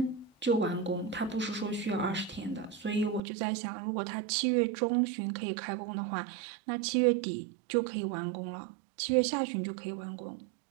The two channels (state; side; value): drops out; left; at 3.2 s